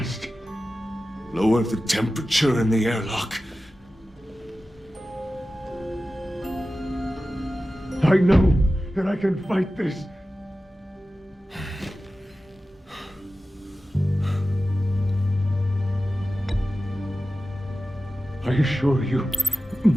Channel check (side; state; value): both; normal; correlation 0.94